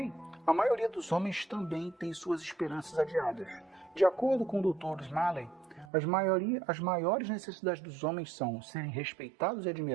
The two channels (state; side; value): drops out; left; at 5.9 s